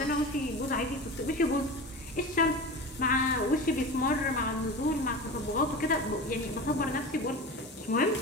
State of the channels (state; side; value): normal; both; correlation 0.30